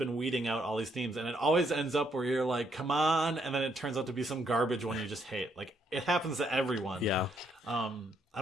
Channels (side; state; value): both; normal; correlation 0.73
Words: weeding out all these themes, and it always ends up where you're like, "Come on!" and then it turns out to be some garbage one you just hate. It happens to everyone. Yeah. I